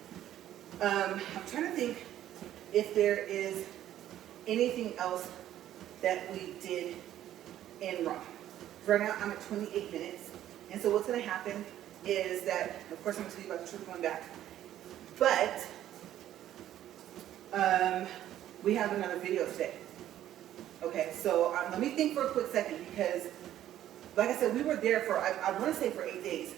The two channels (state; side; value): quieter; left; 12.2 dB